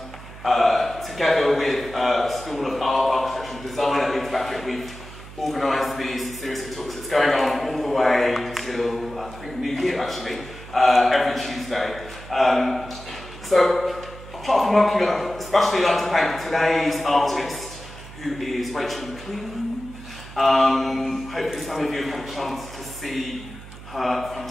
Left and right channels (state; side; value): noise; right; hum, 16 dB below the sound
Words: together with the School of Art, Architecture and Design at Leeds Beckett. We've organised these series of talks. It's going on all the way till, I think, New Year actually, every Tuesday. So, apart from working, I'd especially like to thank today's artist, who is Rachel Maclean. Hopefully some of you have had a chance to see her